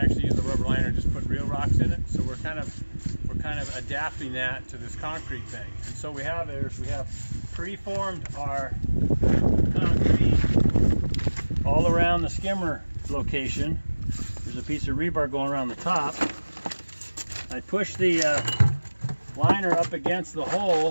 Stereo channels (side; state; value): both; inverted; correlation -1.00